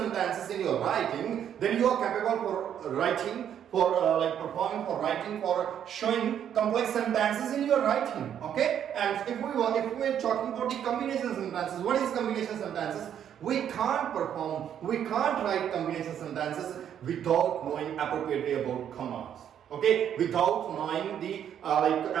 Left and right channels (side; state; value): left; quieter; 9.4 dB